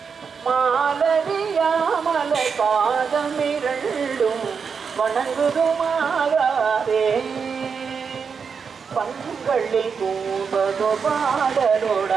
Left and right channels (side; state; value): left; quieter; 6.0 dB